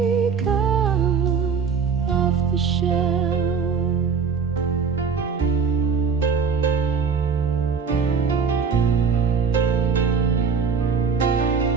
off the shelf.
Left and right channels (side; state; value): left; quieter; 5.8 dB